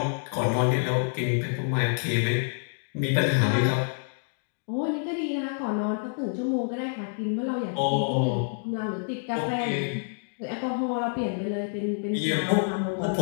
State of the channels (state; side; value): silent; right; digital silence